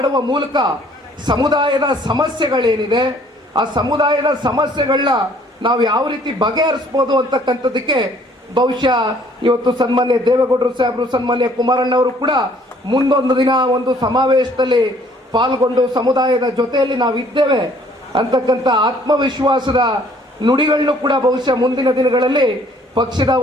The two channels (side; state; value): both; normal; correlation 0.59